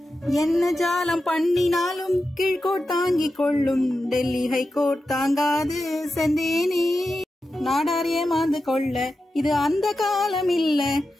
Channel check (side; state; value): both; normal; correlation 0.91